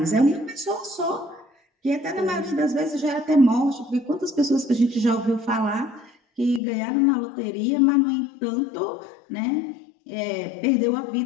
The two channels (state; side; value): drops out; right; at 6.6 s